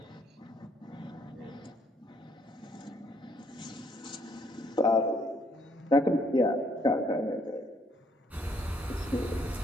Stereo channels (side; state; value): both; normal; correlation 0.68